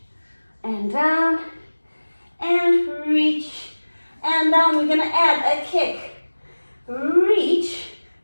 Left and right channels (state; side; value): inverted; both; correlation -1.00